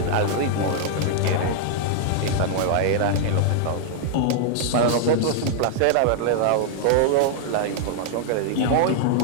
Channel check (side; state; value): both; different; correlation 0.00